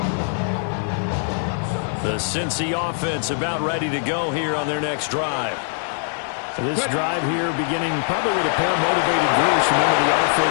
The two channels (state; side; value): silent; right; digital silence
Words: The Cincy offense about ready to go here on their next drive. This drive here beginning probably with a pair of motivated groups. Remember, the